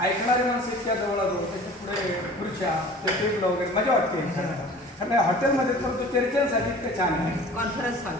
ऐकणारे माणसं इतक्या जवळ त्याच्या पुढे खुर्च्या ते टेबल वगैरे मजा वाटते. कारण हॉटेलमध्ये तर तो चर्चेसाठी इतकं छान आहे. कॉन्फरन्स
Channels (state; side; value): normal; both; correlation 0.44